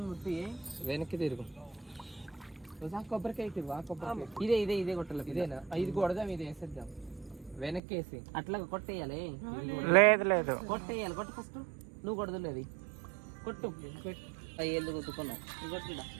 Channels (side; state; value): left; drops out; at 7.8 s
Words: ముట్టి వెనక్కి తిరుగు కొబ్బరికాయ తిరుగు ఆ కొబ్బరికాయ ఇదే ఇదే ఇదే కొట్టాలి ఇదేనా ఇది కొడదాం ఇది వేసేద్దాం వెనక్కి వేసి అట్లా కొట్టేయాలి లేదు కొట్టేయాలి కొట్టు ఫస్ట్ నువ్వు కొడదులేదు కొట్టు అయ్యేళ్ళు కొట్టుకున్నావు కొట్టిడా